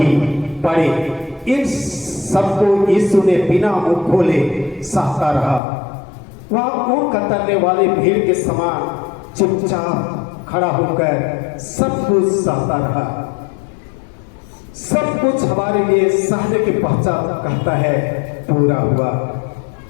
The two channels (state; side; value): drops out; right; at 5.6 s